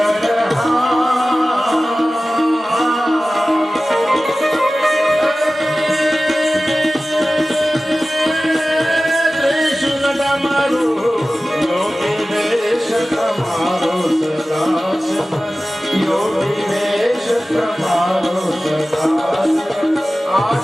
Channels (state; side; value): normal; both; correlation 0.96